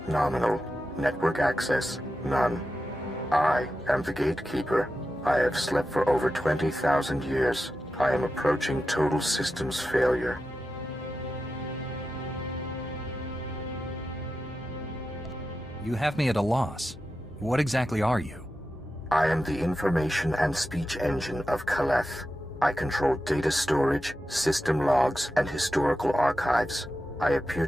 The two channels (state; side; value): normal; both; correlation 0.90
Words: nominal. Network access none. I am the gatekeeper. I have slept for over 20,000 years. I am approaching total systems failure. You have me at a loss. What exactly are you? I am the information and speech engine of Kaleth. I control data storage, system logs, and historical archives. I appear